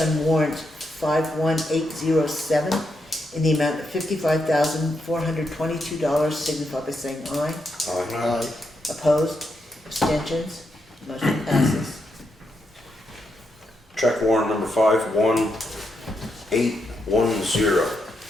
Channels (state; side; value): normal; both; correlation 0.82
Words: warrant 51807 in the amount of $55,422, signify by saying aye. Aye. Opposed? Abstentions? Motion passes. Check warrant number 51810.